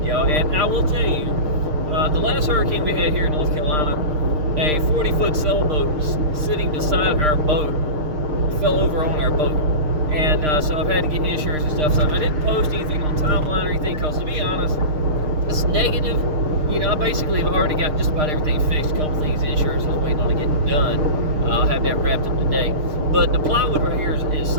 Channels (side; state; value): left; late; 6.5 ms